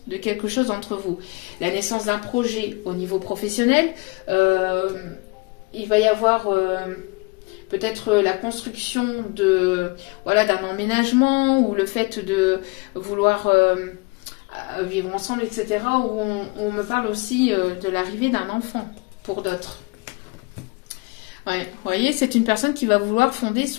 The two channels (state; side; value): quieter; right; 26.9 dB